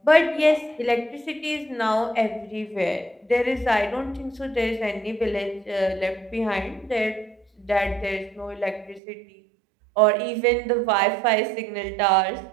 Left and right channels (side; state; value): left; drops out; at 9.0 s